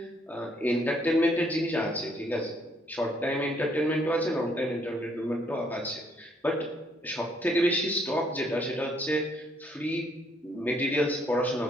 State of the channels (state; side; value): normal; both; correlation 0.68